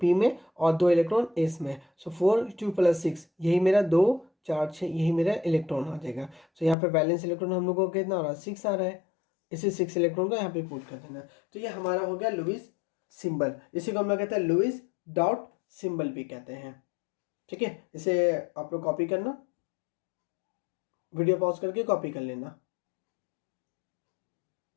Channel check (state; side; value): drops out; right; at 6.8 s